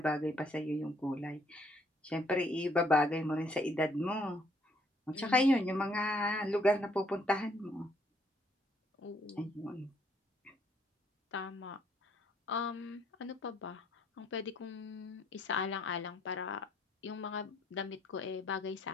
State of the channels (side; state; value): both; normal; correlation 0.67